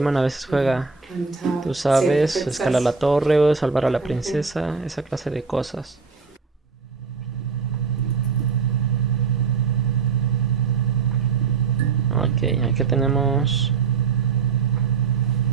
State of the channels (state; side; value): quieter; left; 5.2 dB